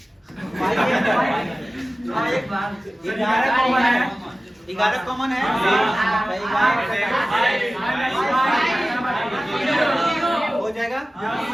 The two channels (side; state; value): both; normal; correlation 0.96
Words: 11 कॉमन है। हो जाएगा।